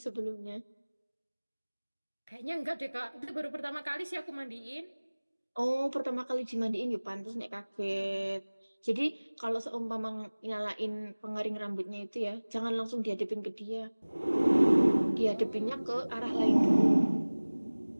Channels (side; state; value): both; inverted; correlation -1.00